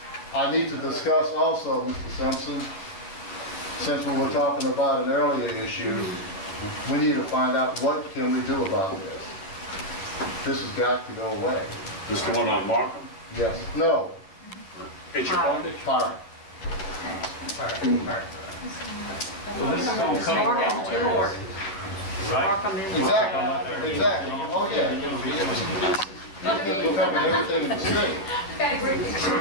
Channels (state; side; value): late; right; 10 ms